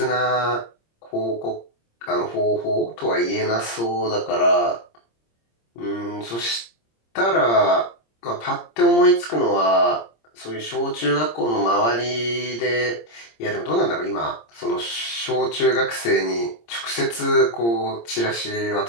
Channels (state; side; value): late; right; 26 ms